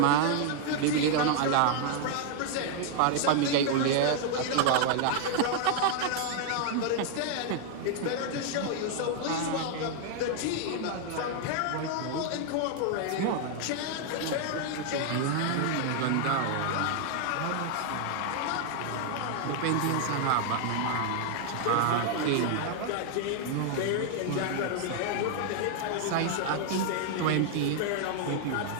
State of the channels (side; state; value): both; different; correlation 0.00